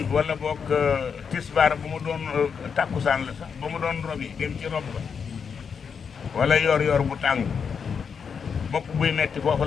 wala boog tisbaar bu mu doon tàkkusaan la sax ba mu doon robi dem ci rob ba wala yor bu tàng bopp buy metti foofu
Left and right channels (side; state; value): right; quieter; 6.4 dB